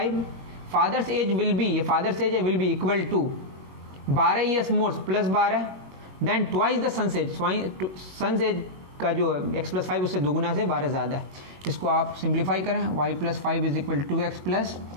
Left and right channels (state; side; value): late; left; 21 ms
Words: father's age will be, ये father's age will be equal to 12 years more plus 12 then twice the son age. Son age का जो x प्लस 5 उससे दुगुना से 12 ज़्यादा है। इसको आप सिंप्लीफाई करें, y plus 5 is equal to x plus